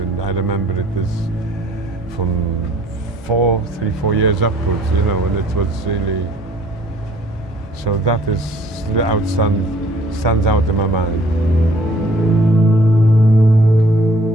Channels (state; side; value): normal; both; correlation 0.57